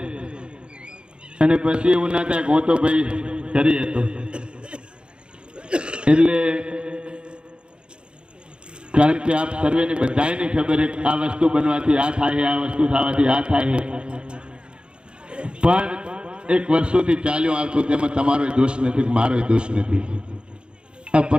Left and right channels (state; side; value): late; left; 0.054 ms